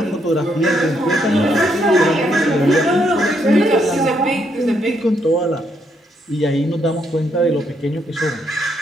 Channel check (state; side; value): normal; both; correlation 0.75